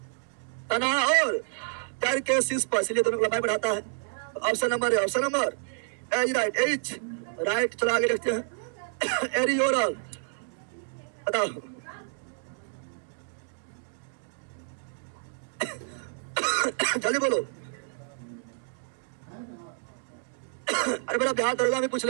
तना और पैर के शीर्ष पर, इसलिए दोनों को लंबाई बढ़ाता है। ऑप्शन नंबर है option number H right, H right. चलो आगे देखते हैं एरियोरल। बताओ जल्दी बोलो। अरे बेटा बिहार दरोगा में पूछ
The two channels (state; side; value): silent; left; 59 dB below the other